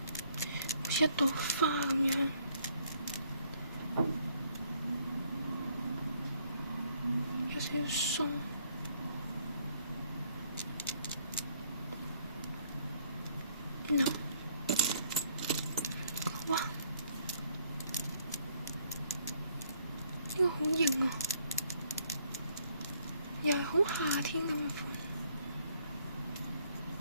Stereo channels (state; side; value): inverted; both; correlation -0.66